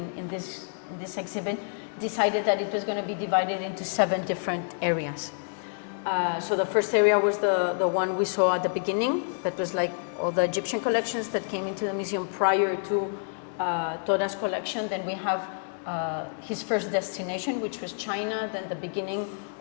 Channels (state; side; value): silent; right; digital silence